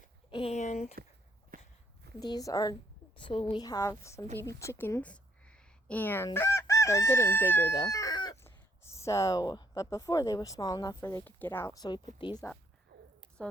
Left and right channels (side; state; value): both; normal; correlation 0.69